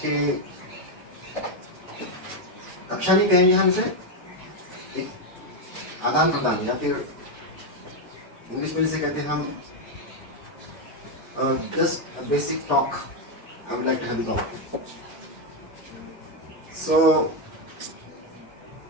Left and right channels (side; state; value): both; normal; correlation 0.05